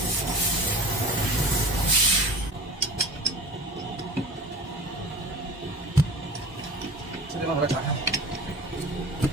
这地方把它打开。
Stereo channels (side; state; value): both; normal; correlation 0.38